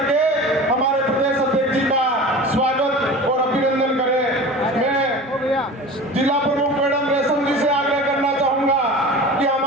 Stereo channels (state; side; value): normal; both; correlation 0.36